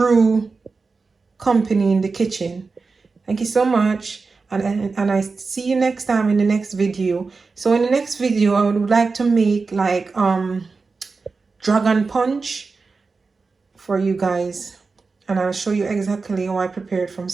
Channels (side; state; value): left; quieter; 4.3 dB